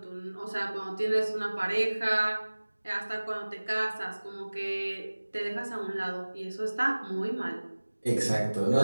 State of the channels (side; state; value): both; inverted; correlation -1.00